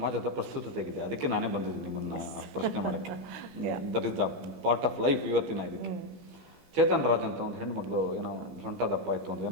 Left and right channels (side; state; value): left; late; 17 ms